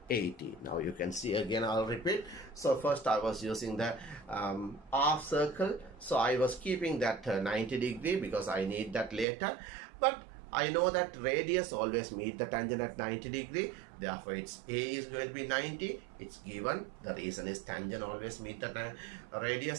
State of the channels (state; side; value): drops out; left; at 9.2 s